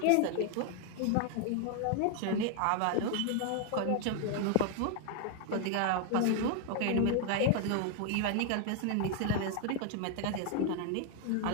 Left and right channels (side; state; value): both; different; correlation 0.00